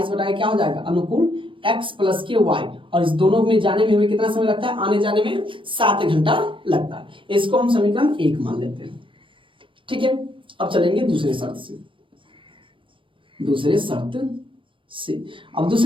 बटा क्या हो जाएगा अनुकूल x प्लस के y, और इस दोनों में जाने में हमें कितना समय लगता है, आने जाने में 7 घंटा लगता है। इसको हम समीकरण 1 मान लेते हैं। ठीक है, अब चलेंगे दूसरे शर्त से। अब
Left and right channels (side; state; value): left; late; 0.25 ms